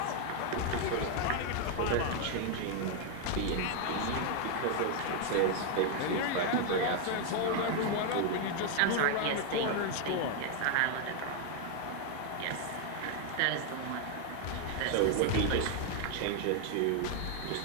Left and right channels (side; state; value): both; different; correlation 0.00